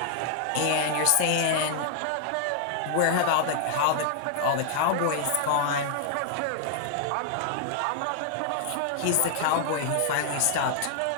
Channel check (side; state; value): both; different; correlation 0.00